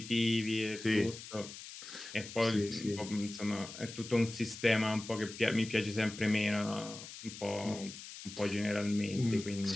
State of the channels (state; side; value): noise; left; hiss, 13 dB below the sound